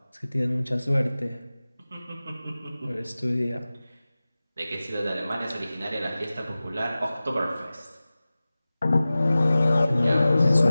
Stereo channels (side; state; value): both; inverted; correlation -0.97